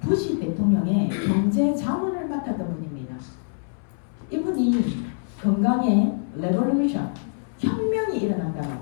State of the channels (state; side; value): silent; right; 60 dB below the other